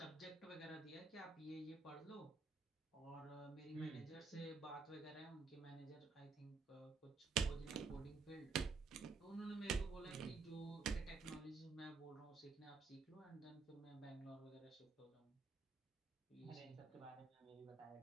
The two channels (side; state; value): left; quieter; 4.4 dB